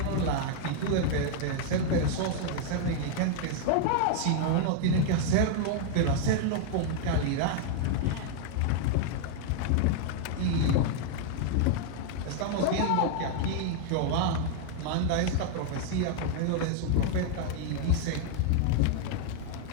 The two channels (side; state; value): both; different; correlation 0.00